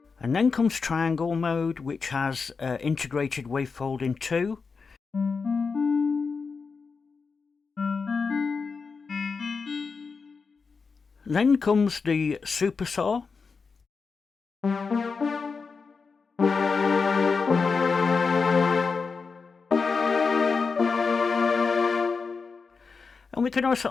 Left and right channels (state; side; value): quieter; right; 4.9 dB